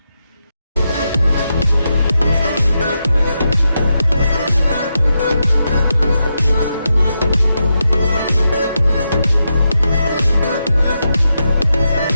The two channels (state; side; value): inverted; both; correlation -0.86